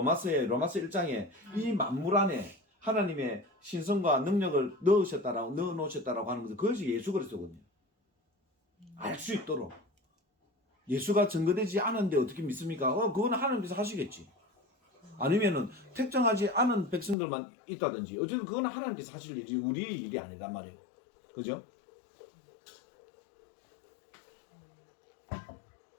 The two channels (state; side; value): drops out; right; at 17.2 s